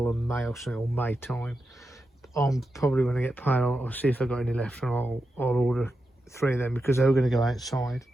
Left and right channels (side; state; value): both; normal; correlation 0.89